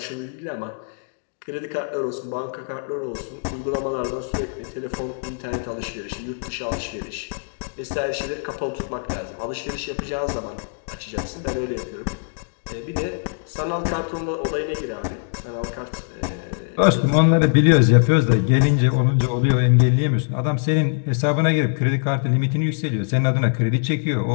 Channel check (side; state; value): right; silent; digital silence